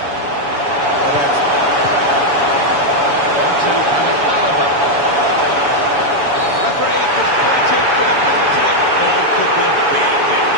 On to Berlim Almada. Referee has pointed for the penalty. All could be a bit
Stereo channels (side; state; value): left; late; 7.0 ms